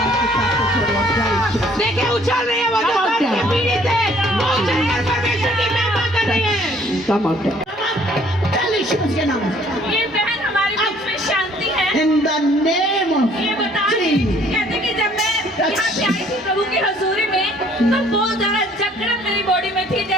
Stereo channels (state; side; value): normal; both; correlation 0.59